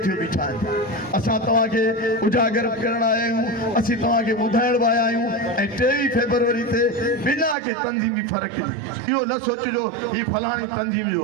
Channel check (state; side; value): drops out; left; at 7.6 s